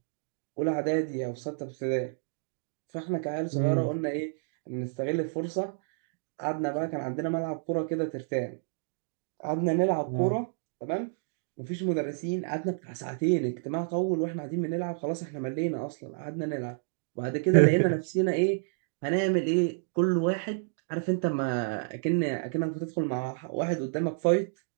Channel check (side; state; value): left; silent; digital silence